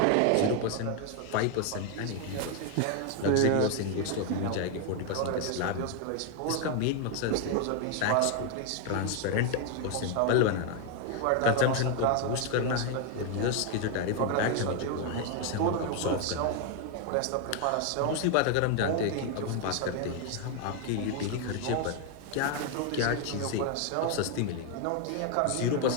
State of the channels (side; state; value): both; different; correlation 0.01